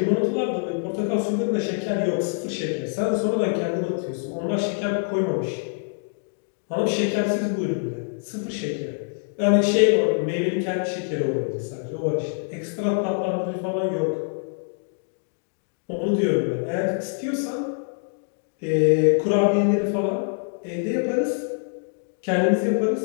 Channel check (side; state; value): right; silent; digital silence